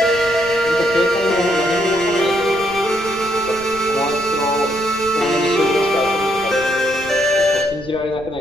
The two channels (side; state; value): right; noise; rumble, 18 dB below the sound